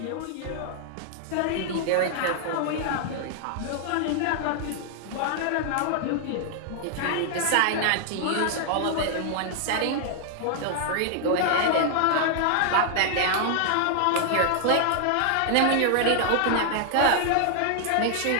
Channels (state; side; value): different; both; correlation 0.00